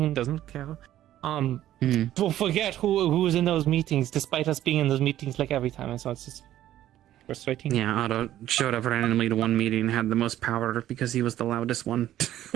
and doesn't care. Will forget who was in those meetings, despite us being in those meetings like every time, and so it's just frustrating. Yeah, Otto showed up randomly to one meeting and had the most power because he was the loudest one.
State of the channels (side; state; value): left; quieter; 12.8 dB